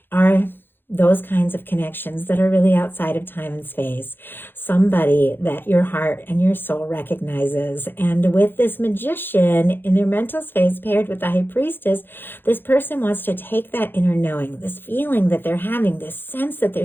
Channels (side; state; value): right; late; 0.10 ms